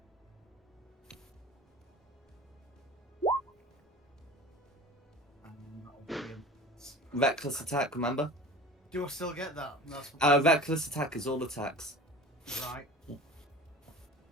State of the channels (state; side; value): normal; both; correlation 0.39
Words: Reckless attack, remember? Do I still get that? That's Reckless attack is all attacks. right.